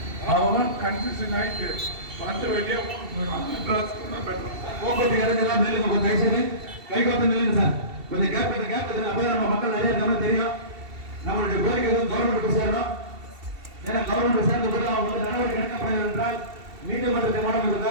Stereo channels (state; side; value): late; left; 2.7 ms